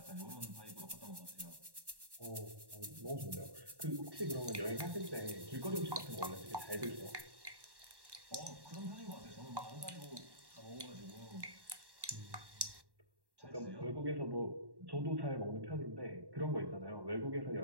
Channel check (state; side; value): late; left; 1.1 ms